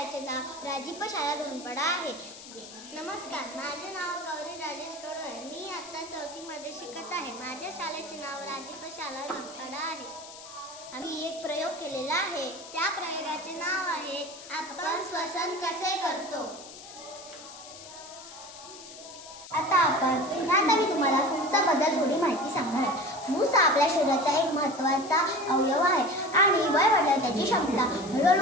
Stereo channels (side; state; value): left; noise; hiss, 15 dB below the sound